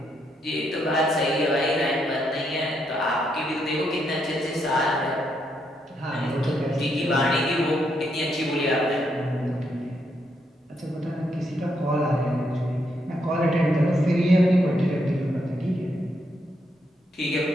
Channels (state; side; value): normal; both; correlation 0.78